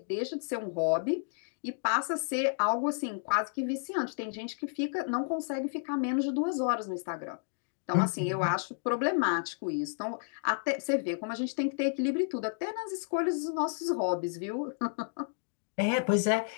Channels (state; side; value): silent; right; digital silence